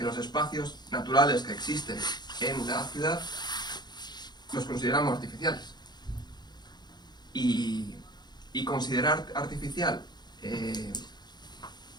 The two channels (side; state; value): right; late; 0.21 ms